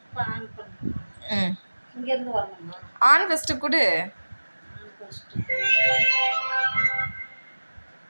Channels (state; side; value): inverted; both; correlation -1.00